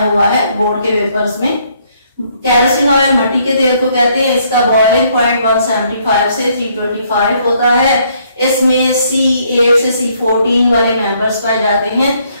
है बोर्ड के पेपर्स में। केरोसिन ऑयल मट्टी के तेल को कहते हैं। इसका बॉइलिंग पॉइंट 175 से 325 होता है। इसमें C8 से C14 वाले मेंबर्स पाए जाते हैं,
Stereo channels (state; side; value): inverted; both; correlation -0.68